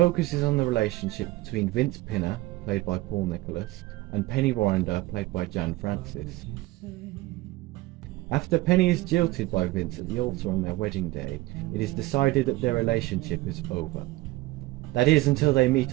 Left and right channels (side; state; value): left; quieter; 19.1 dB